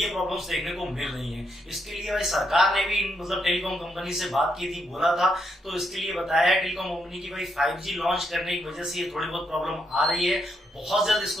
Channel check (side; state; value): both; normal; correlation 0.79